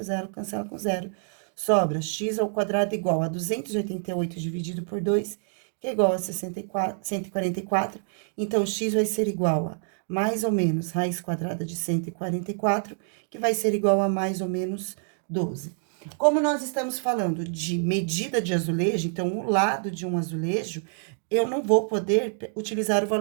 0 cancela com 0. Sobra x ao quadrado igual a 288 dividido por 2, que é igual a 144. Então, x vai ser igual a mais ou menos raiz quadrada de 144, que vai ser igual a mais ou menos 12. Como nós estamos falando de medida de azulejo, então, o lado de um azulejo, eu não vou poder utilizar o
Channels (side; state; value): left; silent; 60 dB below the other